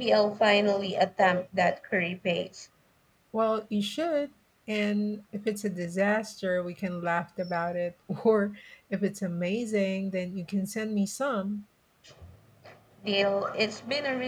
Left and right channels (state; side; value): identical; both; correlation 1.00